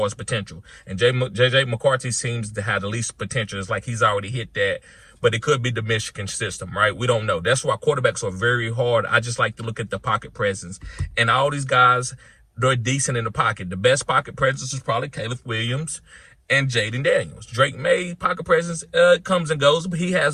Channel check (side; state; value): both; identical; correlation 1.00